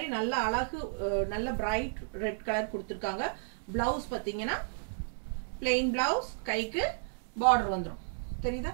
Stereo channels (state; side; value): silent; left; 56 dB below the other